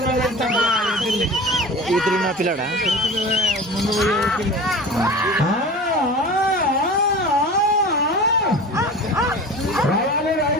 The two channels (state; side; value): normal; both; correlation 0.36